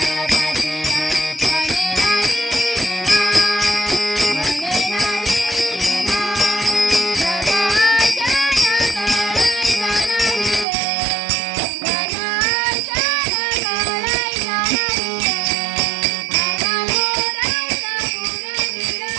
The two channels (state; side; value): drops out; left; at 10.7 s